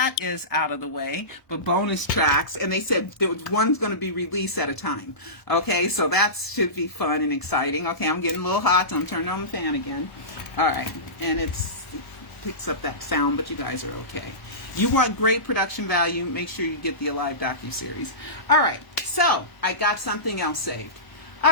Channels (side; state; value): right; late; 1.0 ms